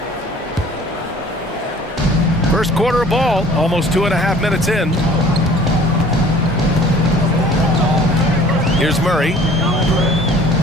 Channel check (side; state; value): both; normal; correlation 0.50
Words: First quarter of ball, almost 2.5 minutes in. Here's Murray.